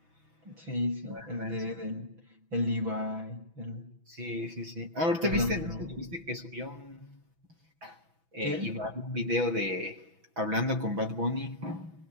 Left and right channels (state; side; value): late; left; 6.1 ms